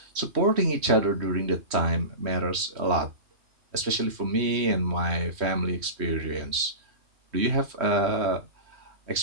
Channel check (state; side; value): late; left; 3.1 ms